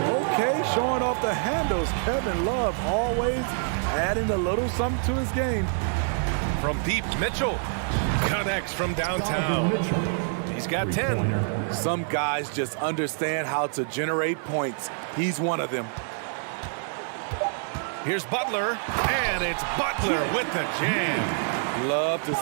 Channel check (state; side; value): silent; left; 58 dB below the other